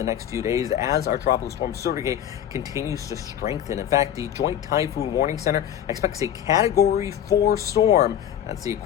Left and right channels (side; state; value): right; quieter; 10.4 dB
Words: next few days as our tropical storm Surigae continues to strengthen. In fact, the Joint Typhoon Warning Center expects a Category 4 storm. That's the